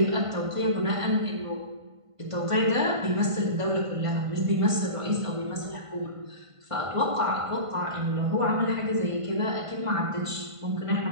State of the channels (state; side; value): late; left; 1.5 ms